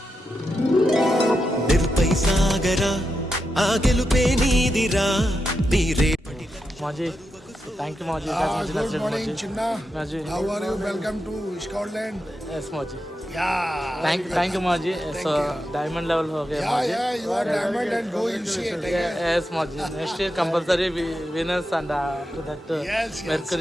నిరుపై సాగరా ఆ గెలుపే నీదిరా, నీ రేపటి మాజీ థ్యాంక్ యూ మాజీ. Good morning, Chinna. మాజీ How are you? Welcome to Scotland. Yes మాజీ. Yeah. थैंक यू माजी. सो डायमंड लेवल हो गया माजी. Yeah, you are diamond and go UCA. Yes माजी. Next year compulsory winners and to that Yes.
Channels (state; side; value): normal; both; correlation 0.87